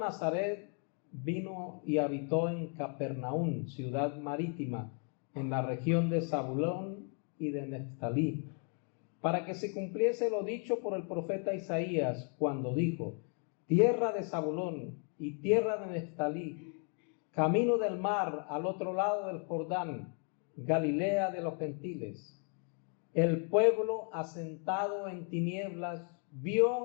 vino y habitó en Capernaum, ciudad marítima, en la región de Zabulón y de Neftalí, para que se cumpliese lo dicho por el profeta Isaías, cuando dijo, tierra de Zabulón y tierra de Neftalí, camino del mar al otro lado del Jordán, Galilea de los gentiles. El pueblo asentado en tinieblas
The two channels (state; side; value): quieter; right; 38.9 dB